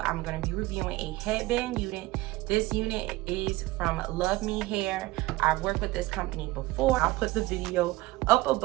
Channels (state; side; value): quieter; left; 19.3 dB